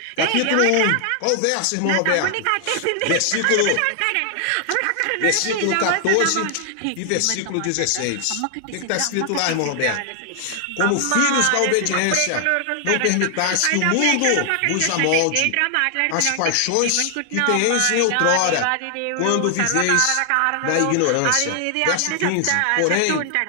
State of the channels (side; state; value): both; different; correlation 0.00